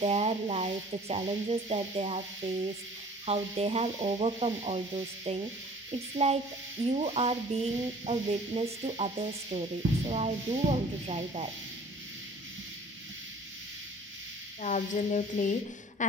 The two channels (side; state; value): both; normal; correlation 0.50